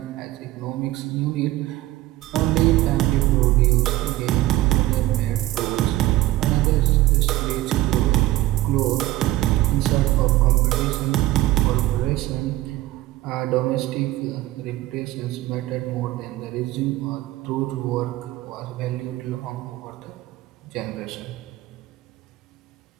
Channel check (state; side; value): quieter; left; 16.5 dB